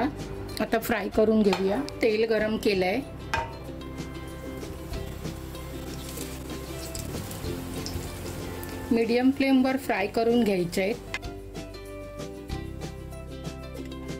आता फ्राय करून घेऊया. तेल गरम केलं आहे. मीडियम फ्लेमवर फ्राय करून घ्यायचे आहेत.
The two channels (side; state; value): both; identical; correlation 1.00